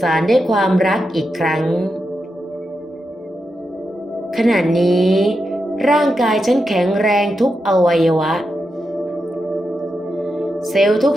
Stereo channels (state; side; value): normal; both; correlation 0.87